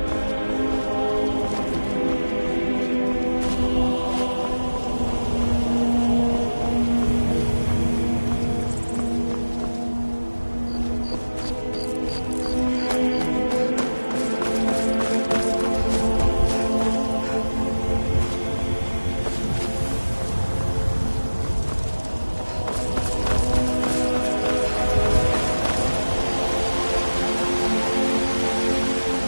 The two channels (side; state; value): both; inverted; correlation -1.00